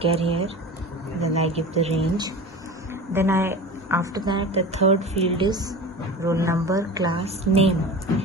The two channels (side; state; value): both; normal; correlation 0.33